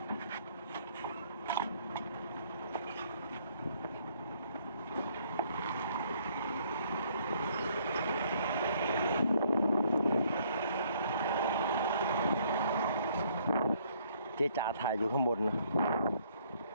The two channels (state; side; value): inverted; both; correlation -0.65